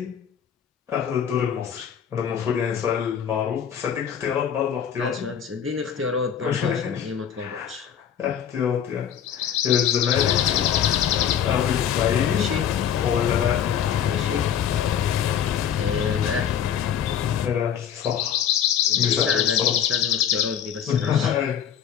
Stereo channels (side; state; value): right; quieter; 8.8 dB